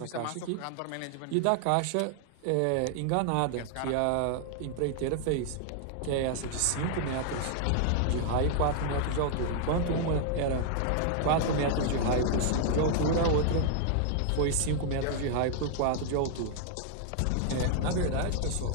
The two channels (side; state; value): both; different; correlation 0.00